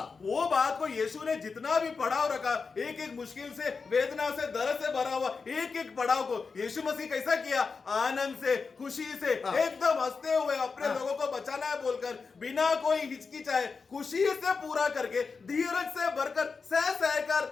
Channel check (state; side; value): quieter; right; 4.9 dB